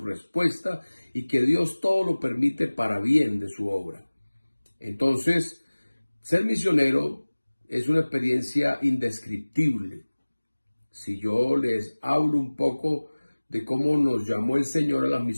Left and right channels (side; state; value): both; inverted; correlation -1.00